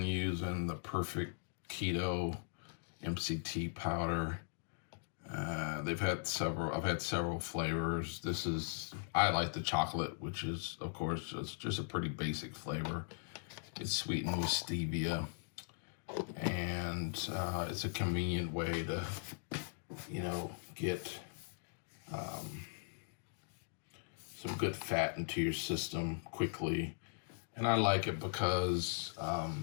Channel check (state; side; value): silent; right; digital silence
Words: using the Perfect Keto MCT powder. I've had several flavors. I like the chocolate, which is, of course, just a pretty basic flavor. It's sweetened with stevia, and it's a convenient way to, get some good fat into your system quickly. And I like it because